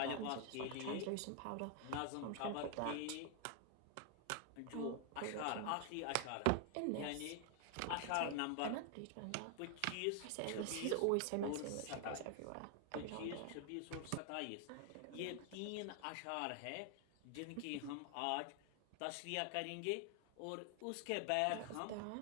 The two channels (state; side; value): different; both; correlation 0.00